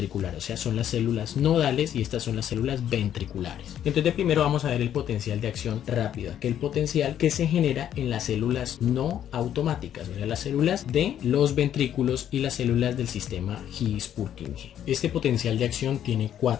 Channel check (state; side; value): quieter; right; 10.3 dB